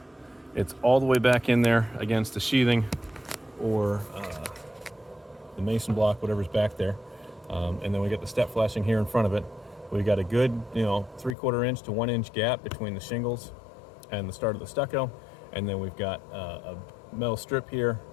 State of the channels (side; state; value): right; drops out; at 11.4 s